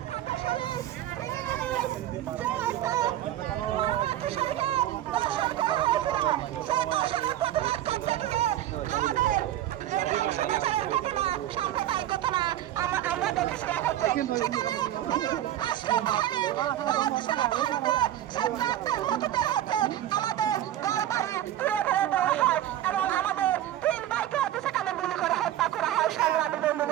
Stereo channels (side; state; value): left; quieter; 12.7 dB